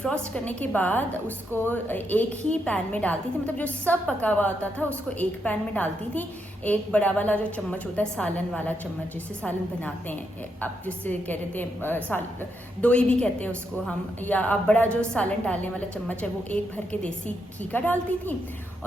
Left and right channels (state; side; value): normal; both; correlation 0.80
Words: करने के बाद उसको एक ही पैन में डालती थी। मतलब जो सब पका हुआ होता था उसको एक पैन में डालती थी। एक बड़ा वाला जो चम्मच होता है, सालन वाला चम्मच, जिससे सालन बनाते हैं आप, जिससे कह रहे थे दोई भी कहते हैं उसको हम, या आप बड़ा जो सालन डालने वाला चम्मच है वो एक भर के देसी घी का डालती थी